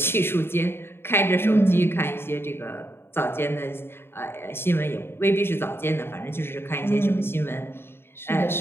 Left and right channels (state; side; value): late; right; 0.11 ms